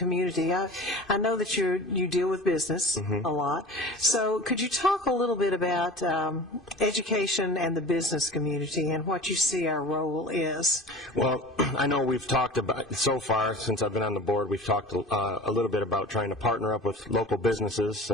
I know that you deal with business a lot. So could you talk a little bit about education and the business community and what you see our role is? Well, I know we've talked about, so far since I've been on the board, we've talked a little bit about trying to partner up with local businesses,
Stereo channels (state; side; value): normal; both; correlation 0.38